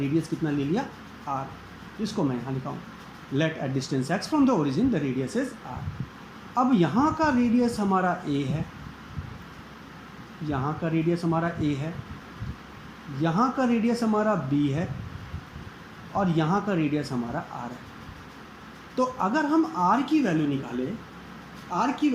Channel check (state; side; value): identical; both; correlation 1.00